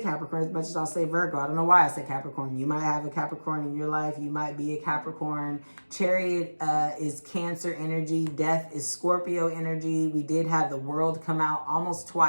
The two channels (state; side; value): inverted; both; correlation -1.00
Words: as much as I'll say Virgo. I don't know why I said Capricorn. You might have a Capricorn in your life. You might be a Capricorn. Chariot is Cancer energy. Death is Scorpio energy. We did have the World come out almost